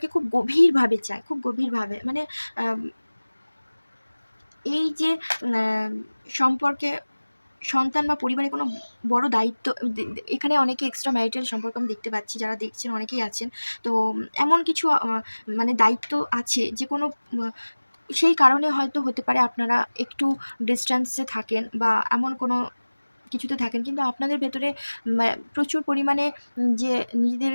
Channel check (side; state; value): both; inverted; correlation -1.00